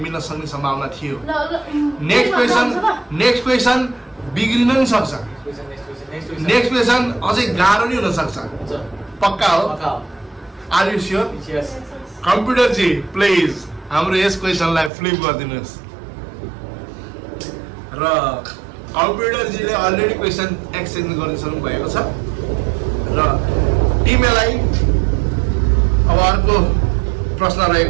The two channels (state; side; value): drops out; left; at 14.9 s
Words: सक्ने सम्भावना थियो। नेक्स्ट क्वेसन बिग्रिन नि सक्छ। नेक्स्ट क्वेसन अझै गाह्रो नि हुन सक्छ। पक्का हो? Are you sure? यस कम्प्युटर जी प्लिज हाम्रो यस क्वेसनलाई फ्लिप गरिदिनुहोस्। र कम्प्युटर जीले अलरेडी क्वेसन एक्सचेन्ज गरिसक्नु भएको छ र टिमलाई अब अर्को प्रश्न